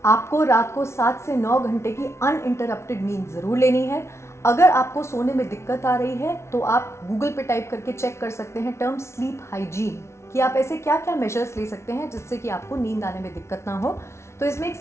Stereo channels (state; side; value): late; right; 0.13 ms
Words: आपको रात को 7 से 9 घंटे की अनइंटरप्टेड नींद ज़रूर लेनी है। अगर आपको सोने में दिक्कत आ रही है तो आप गूगल पे टाइप करके चेक कर सकते हैं टर्म स्लीप हाइजीन, कि आप ऐसे क्या क्या मेजर्स ले सकते हैं जिससे कि आपको नींद आने में दिक्कत ना हो। तो इसमें एक